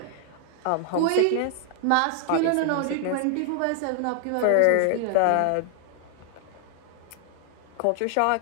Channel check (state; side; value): different; both; correlation 0.00